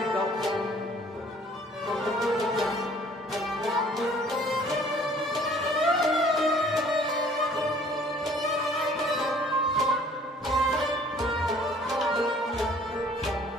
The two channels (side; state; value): both; normal; correlation 0.55